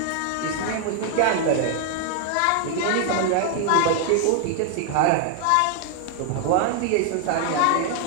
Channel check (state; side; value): different; both; correlation 0.00